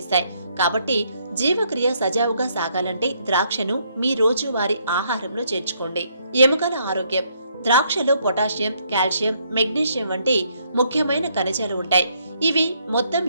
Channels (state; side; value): inverted; both; correlation -0.71